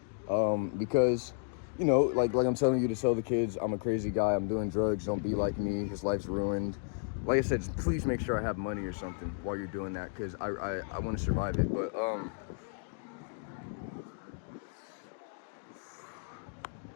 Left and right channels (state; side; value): silent; right; digital silence